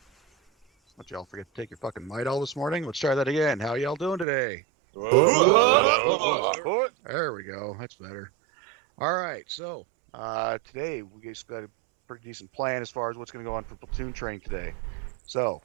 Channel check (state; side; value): drops out; left; at 4.2 s